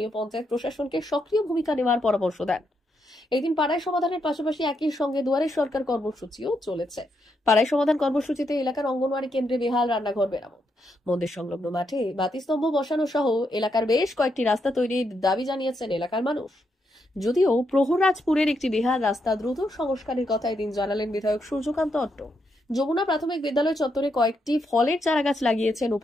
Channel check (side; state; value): both; normal; correlation 0.80